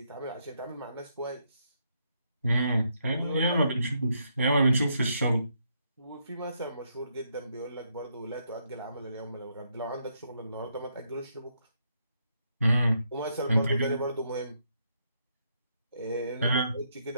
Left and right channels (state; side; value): inverted; both; correlation -0.76